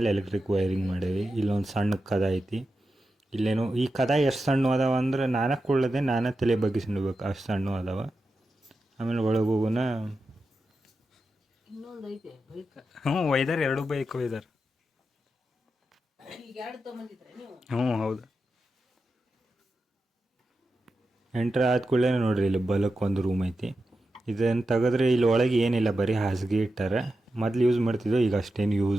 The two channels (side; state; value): both; normal; correlation 0.90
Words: ಎಲೆಕ್ಟ್ರಿಕ್ ವೈರಿಂಗ್ ಮಾಡೇವಿ. ಇಲ್ಲೊಂದು ಸಣ್ಣ ಕದ ಐತಿ. ಇಲ್ಲೇನು ಈ ಕದ ಎಷ್ಟು ಸಣ್ಣ ಅದಾವ ಅಂದ್ರೆ ನಾನೇ ಕೊಳ್ಳದೆ ನಾನೇ ತಲೆ ಬಗ್ಗಿಸ್ಬೇಕು, ಅಷ್ಟು ಸಣ್ಣ ಅದಾವ. ಆಮೇಲೆ ಒಳಗೆ ಹೋಗೋಣ. ಹ್ಞೂ ಒಯ್ದಾರ, 2 ಬೈಕ್ ಒಯ್ದಾರ. ಹ್ಞೂ ಹೌದು. ಎಂಟ್ರ್ ಆದ ಕೂಡಲೇ ನೋಡ್ರಿ, ಇಲ್ಲಿ ಬಲಕ್ಕೆ ಒಂದು ರೂಮ್ ಐತಿ. ಇದನ್ನು ತೆಗೆದ್ರೆ ಇಲ್ಲಿ ಒಳಗೆ ಏನಿಲ್ಲ, ಬರೀ ಹಾಸಿಗೆ ಇಟ್ಟಾರ. ಮೊದ್ಲು ಯೂಸ್ ಮಾಡ್ತಿದ್ದೋ, ಈಗ ಅಷ್ಟೇನು